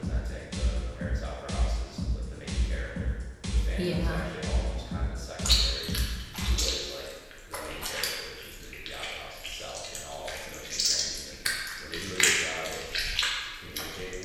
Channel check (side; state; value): both; identical; correlation 1.00